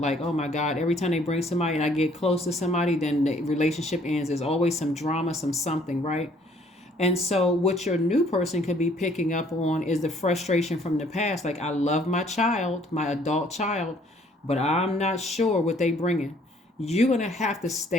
Like, oh my God, every time they bring somebody and I get close to somebody, then the relationship ends. There's always some drama, something, right? And so what your new person could be picking up on is the frustration from the past. Like, I love my child, my adult child, but I'm not sure what they bringing. You're going to have to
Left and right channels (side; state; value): both; normal; correlation 0.61